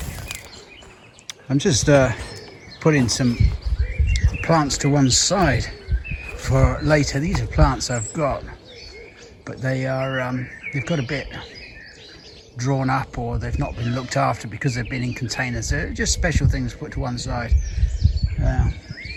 I'm just putting some plants to one side for later. These are plants I've got, but they are they've got a bit drawn up, or they've not been looked after because they've been in containers. They're just special things put to one side,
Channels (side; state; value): both; identical; correlation 1.00